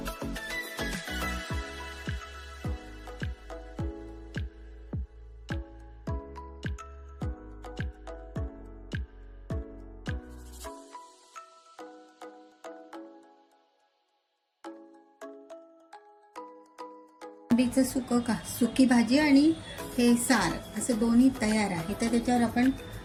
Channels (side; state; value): both; identical; correlation 1.00